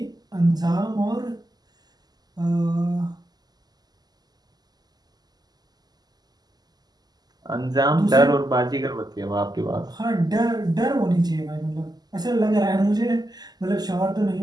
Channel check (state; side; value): late; left; 0.20 ms